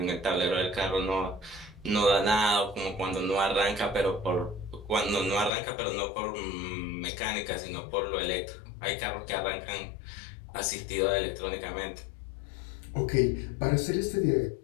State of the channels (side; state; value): right; drops out; at 5.5 s